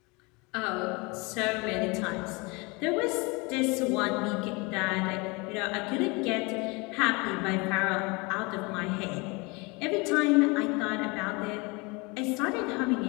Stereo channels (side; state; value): right; quieter; 27.3 dB